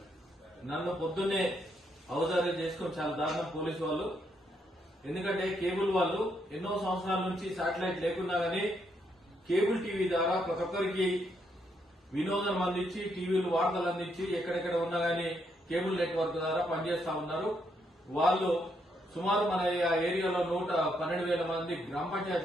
నన్ను పొద్దున్నే అవధారణ చేసుకుని చాలా దారుణం పోలీసు వాళ్ళు. ఎందుకంటే కేబుల్ వాళ్ళు ఎన్నో సంవత్సరాల నుంచి శాటిలైట్ లేకున్నా గానీ కేబుల్ టీవీ ద్వారా ప్రతి ఒక్కరికి వినోదం అందించి టీవీలు వార్తలు అందించి ఎక్కడెక్కడ ఉన్నా గానీ కేబుల్ నెట్వర్క్ ద్వారా పనిచేస్తా ఉన్నారు. వాళ్ళు సుమారు మన ఏరియాలో 112,000 మంది గ్రామ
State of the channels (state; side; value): normal; both; correlation 0.76